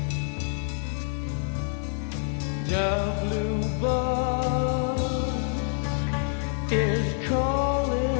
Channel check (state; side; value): silent; right; 59 dB below the other